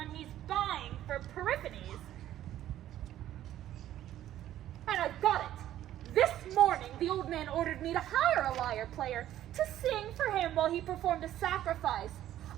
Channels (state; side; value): quieter; left; 12.6 dB